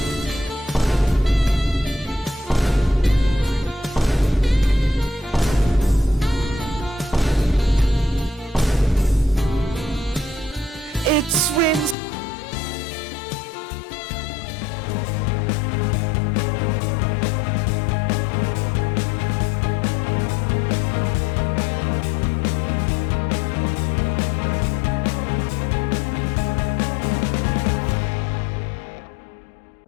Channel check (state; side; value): drops out; right; at 12.0 s